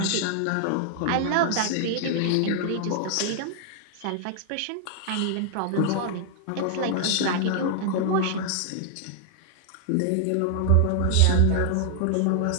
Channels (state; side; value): different; both; correlation -0.01